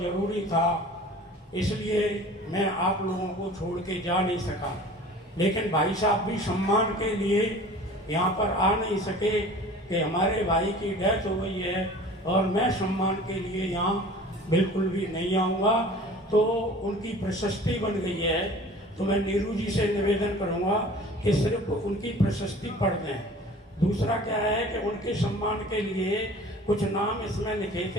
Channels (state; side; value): normal; both; correlation 0.44